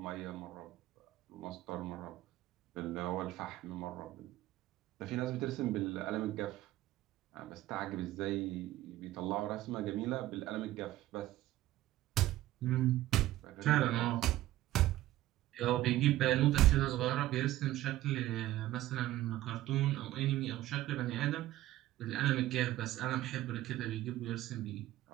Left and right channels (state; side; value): quieter; left; 15.3 dB